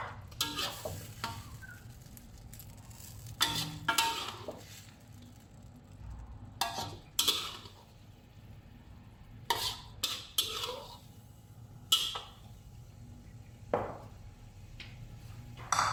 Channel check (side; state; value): both; identical; correlation 1.00